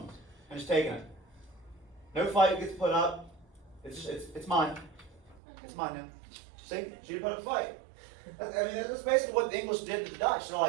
and just taking it. No fight gets put up. It's mine. It's mine now. See, she didn't put up a fight. I mean, that's basically what the English did to the Dutch. They're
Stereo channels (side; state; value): left; drops out; at 5.4 s